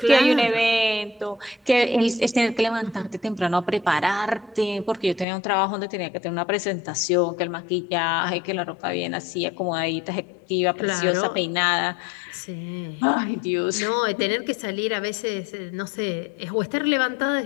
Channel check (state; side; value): drops out; right; at 5.2 s